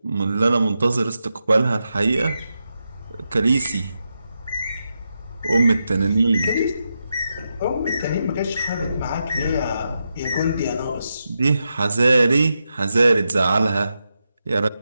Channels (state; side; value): inverted; both; correlation -0.87